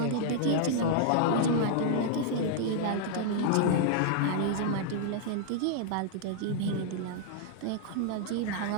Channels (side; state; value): both; different; correlation -0.01